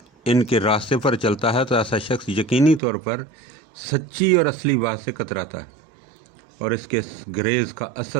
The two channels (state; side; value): drops out; left; at 2.8 s